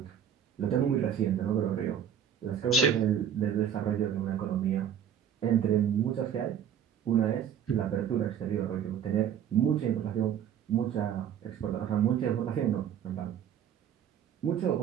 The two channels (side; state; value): left; quieter; 8.9 dB